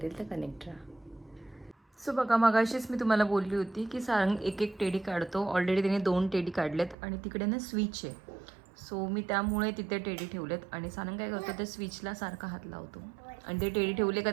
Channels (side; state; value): left; drops out; at 7.0 s